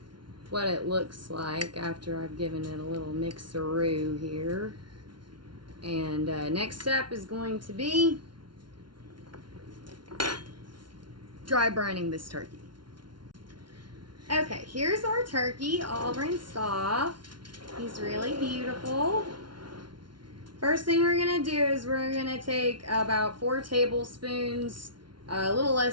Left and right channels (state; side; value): late; left; 0.71 ms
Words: what it looks like after I've given it a little mixeroo here. And next step is going to be dry brining this turkey. Okay, here's our turkey all rinsed off. He's really beautiful. First thing we're gonna do is we're gonna take about 4 tablespoons, a little